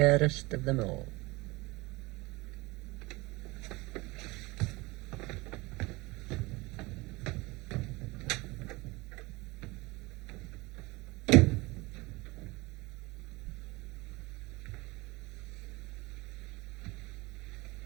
of them all?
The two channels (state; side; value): quieter; left; 22.9 dB